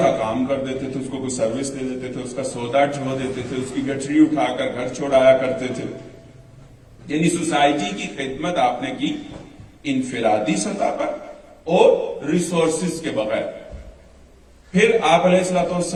کام کر دیتے تھے, اس کو کوئی سروس دے دیتے تھے, اس کا سودا ڈھو دیتے تھے, اس کی گٹری اٹھا کر گھر چھوڑایا کرتے تھے. یعنی سوسائٹی کی خدمت آپ نے کی انفرادی سطح پر اور ریسورسز کے بغیر. پھر آپ علیہ الصلوۃ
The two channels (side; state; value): both; identical; correlation 1.00